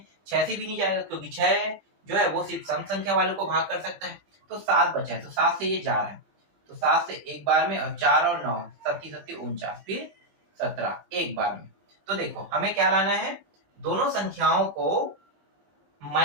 6 से भी नहीं जाएगा, क्योंकि 6 जो है वो सिर्फ सम संख्या वाले को भाग कर सकता है, तो 7 बचा है, तो 7 से ये जा रहा है, तो 7 से एक बार में, और 4 और 9, 37, 49, फिर 17 एक बार में। तो देखो हमें क्या लाना है, दोनों संख्याओं को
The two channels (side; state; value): left; late; 21 ms